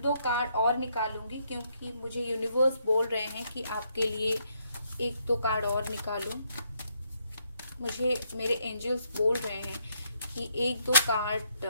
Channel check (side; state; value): both; inverted; correlation -0.74